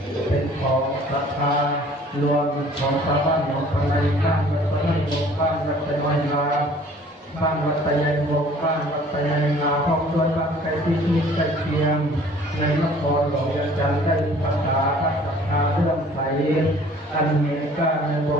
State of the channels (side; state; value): both; normal; correlation 0.52